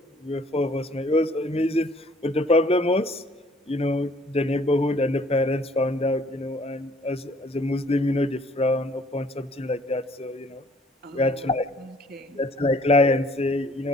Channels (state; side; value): normal; both; correlation 0.59